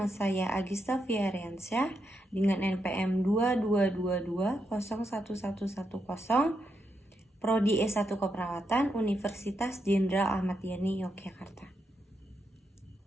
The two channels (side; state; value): both; normal; correlation 0.83